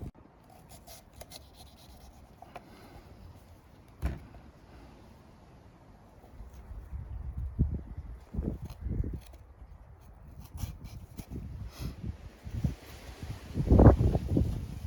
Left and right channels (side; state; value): both; identical; correlation 1.00